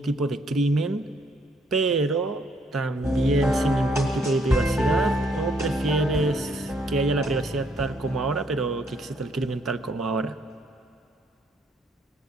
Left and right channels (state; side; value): normal; both; correlation 0.69